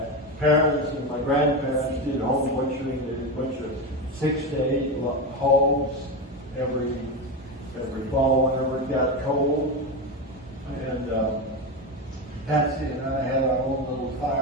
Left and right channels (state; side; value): normal; both; correlation 0.16